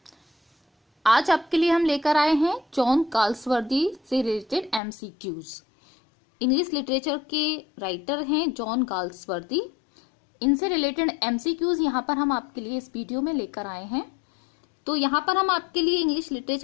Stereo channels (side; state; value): right; drops out; at 4.8 s